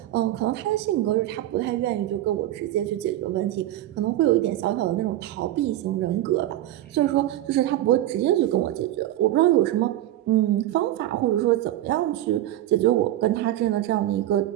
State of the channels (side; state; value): left; quieter; 14.1 dB